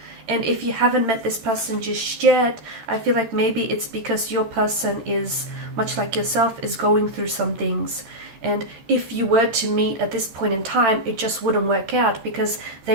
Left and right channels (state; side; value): late; left; 13 ms